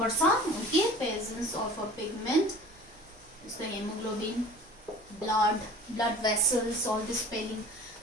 Okay, presence of a pigment is the hemoglobin, blood vessels, all this spelling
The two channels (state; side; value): noise; right; rumble, 28 dB below the sound